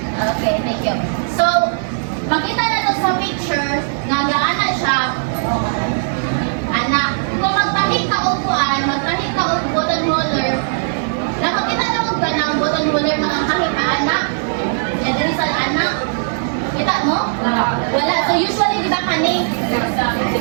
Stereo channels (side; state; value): left; silent; 62 dB below the other